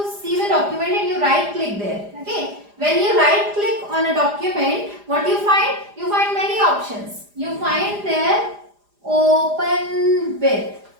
see the document and you right click there, okay. When you right click on a document, what you find? You find many options. You find there open with.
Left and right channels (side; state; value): left; late; 4.9 ms